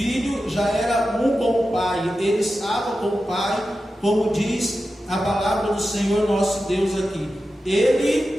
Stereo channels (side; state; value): both; normal; correlation 0.92